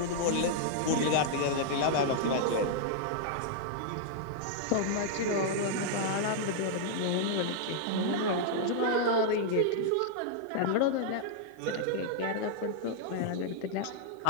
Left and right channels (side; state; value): both; different; correlation -0.01